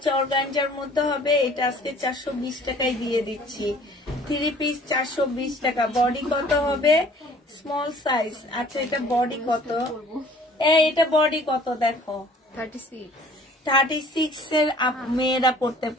অর্গানজার মধ্যে হবে। এটা আজকে 420 টাকায় দিয়ে দিচ্ছি। 3 পিস 420 টাকা। বডি কত হবে? Small size. আচ্ছা এটা বডি কত? এটা বডি কত দেখো? 36 এর মেয়েরা পড়তে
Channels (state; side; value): normal; both; correlation 0.52